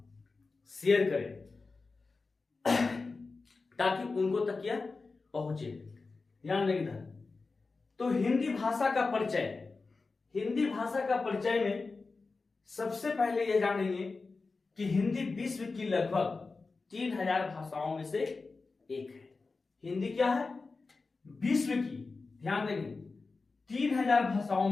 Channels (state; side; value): quieter; right; 4.0 dB